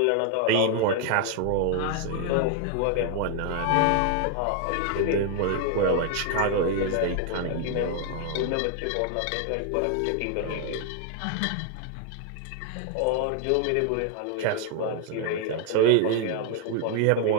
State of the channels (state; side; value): different; both; correlation 0.00